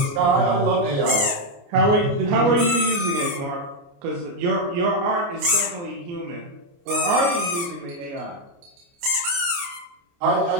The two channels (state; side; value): late; left; 29 ms